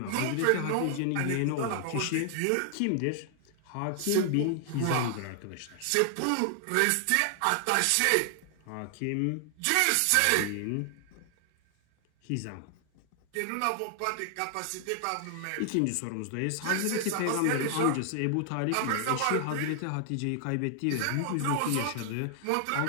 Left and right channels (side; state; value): both; different; correlation 0.00